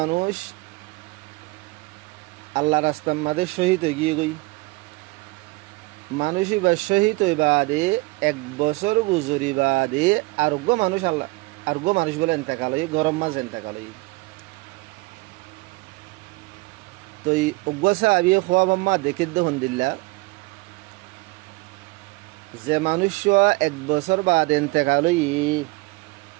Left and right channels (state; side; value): quieter; left; 23.7 dB